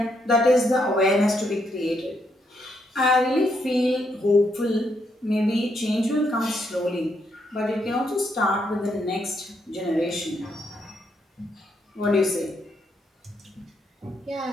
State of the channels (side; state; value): both; normal; correlation 0.77